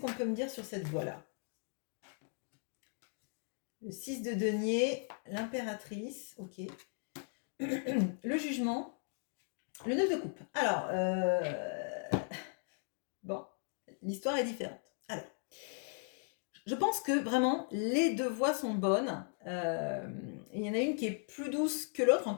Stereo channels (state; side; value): silent; right; 53 dB below the other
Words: peut me dire sur cette voix-là? Le 6 de denier, l'impératrice, ok. Le jugement, le 9 de coupe. Alors, bon, l'histoire est différente. Alors, je pense que vraiment, les 2 voix sont bonnes. Il y en a une qui est plus douce que l'autre,